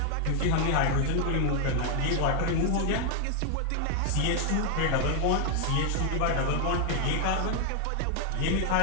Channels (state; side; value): different; both; correlation 0.00